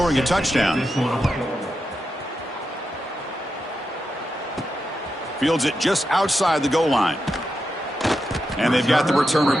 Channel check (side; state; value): both; normal; correlation 0.87